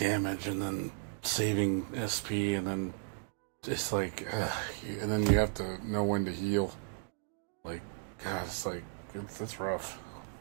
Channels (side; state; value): left; silent; digital silence